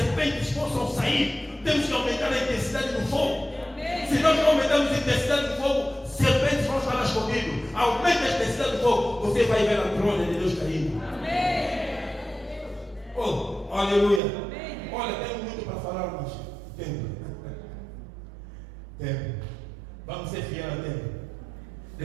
possam sair. Temos que aumentar a intensidade do fogo. Se nós não aumentarmos a intensidade do fogo, serpentes vão estar escondidos. Aumenta a intensidade do fogo, você vai ver a glória de Deus caindo. Oh, aleluia. Olha, tenho muito para falar, mas tempo. Vamos ser fiéis ao tempo.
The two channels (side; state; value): left; drops out; at 14.2 s